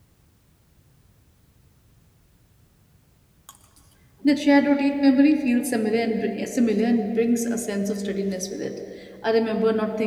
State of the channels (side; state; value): both; identical; correlation 1.00